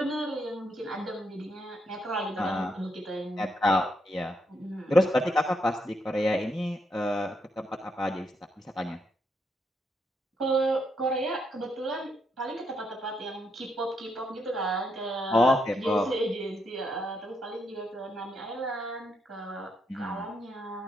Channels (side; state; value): both; normal; correlation 0.78